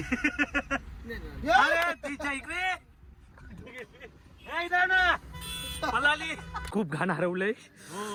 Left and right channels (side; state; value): both; identical; correlation 1.00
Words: अरे तिच्या इकडे खूप घाण हरवलंय.